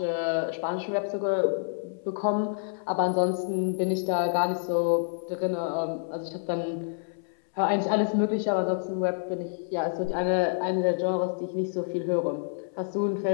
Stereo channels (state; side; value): silent; right; 59 dB below the other